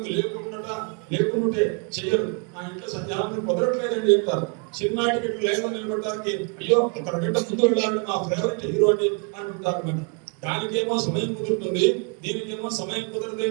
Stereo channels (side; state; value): left; quieter; 36.4 dB